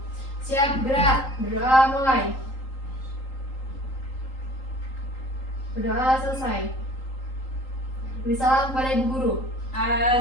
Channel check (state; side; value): late; right; 3.8 ms